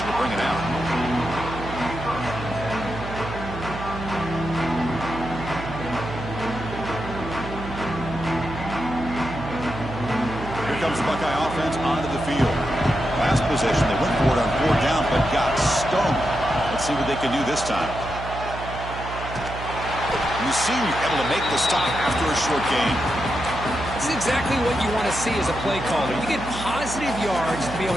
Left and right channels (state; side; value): noise; right; hum, 9 dB below the sound